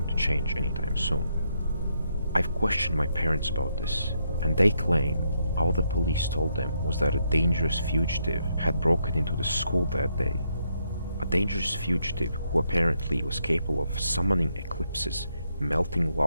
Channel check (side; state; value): both; inverted; correlation -0.77